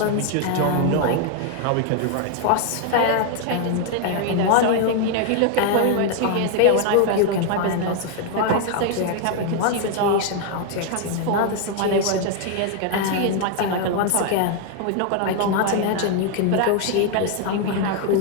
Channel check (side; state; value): both; different; correlation 0.00